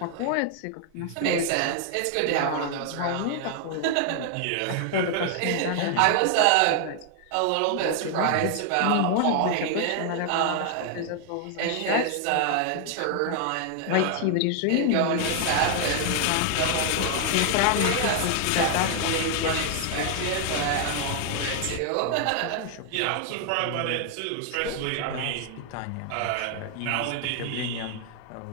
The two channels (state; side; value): different; both; correlation 0.00